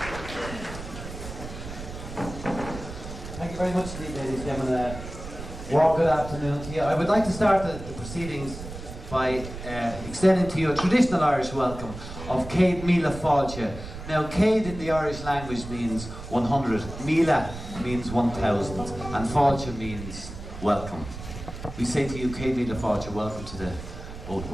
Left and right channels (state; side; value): noise; right; rumble, 11 dB below the sound